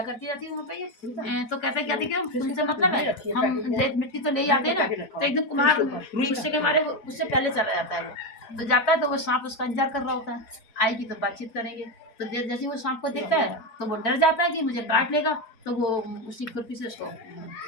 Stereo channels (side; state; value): right; late; 4.0 ms